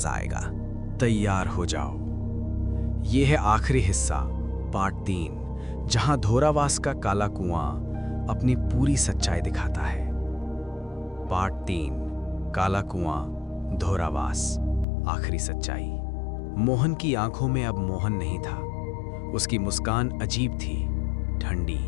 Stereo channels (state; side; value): drops out; right; at 14.9 s